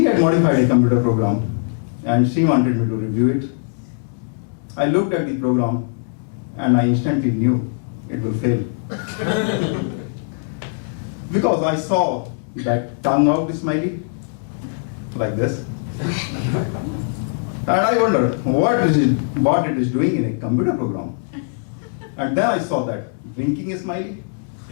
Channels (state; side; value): silent; right; 65 dB below the other